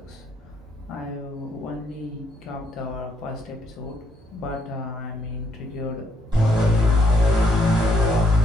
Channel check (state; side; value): normal; both; correlation 0.73